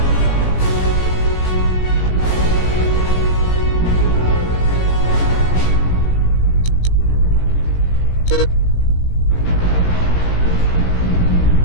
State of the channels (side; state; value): right; late; 17 ms